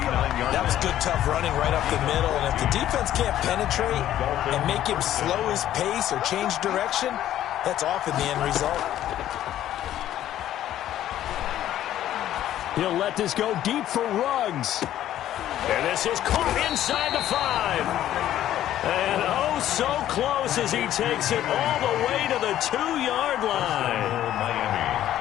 was good, tough running right up the middle. And if the defense can't penetrate and make him slow his pace or change direction, that's often the end result. He'll let this go deep for Ruggs. And this is caught inside the 5. And oh, so close as he takes it all the way to the 2-yard line.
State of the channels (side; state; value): right; quieter; 12.3 dB